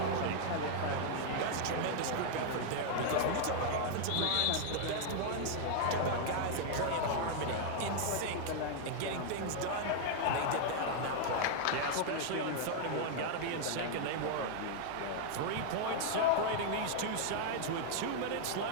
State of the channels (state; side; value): different; both; correlation 0.00